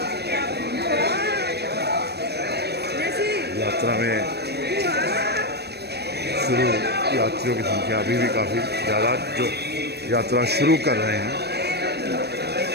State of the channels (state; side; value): late; left; 0.47 ms